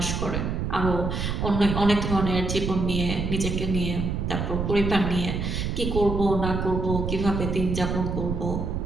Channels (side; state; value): right; noise; rumble, 2 dB below the sound